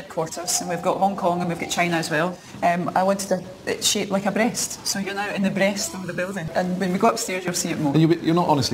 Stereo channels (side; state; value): both; identical; correlation 1.00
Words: and we've got Hong Kong and we've got China as well. I wanted it shaped like a breast, so you're now in the breast of the building. And when we go upstairs, you'll see it more. And you're